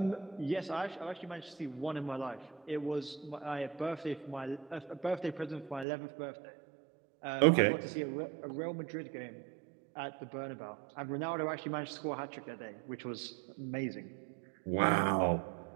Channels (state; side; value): drops out; left; at 5.9 s